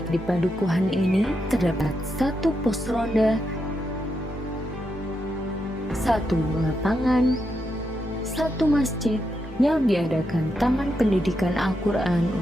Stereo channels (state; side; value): normal; both; correlation 0.83